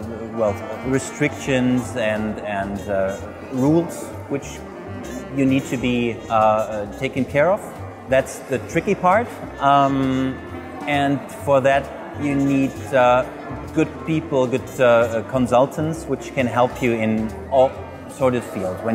restrictions and rules which you need to be taken care of. That's the tricky part, and for that you need good people, good consultants which can help you in all sorts of fields.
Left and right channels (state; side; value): identical; both; correlation 1.00